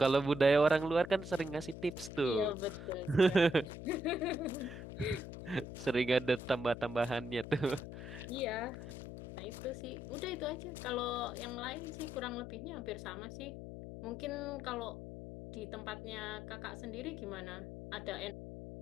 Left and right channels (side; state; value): left; noise; hum, 10 dB below the sound